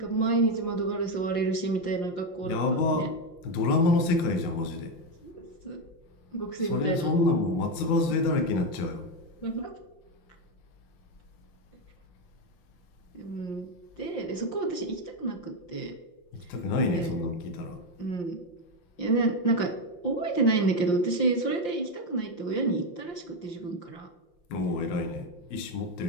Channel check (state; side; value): late; right; 5.7 ms